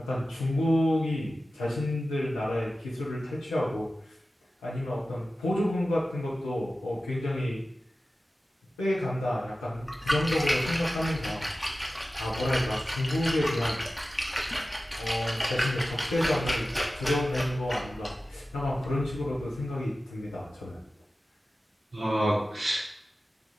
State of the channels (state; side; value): normal; both; correlation 0.95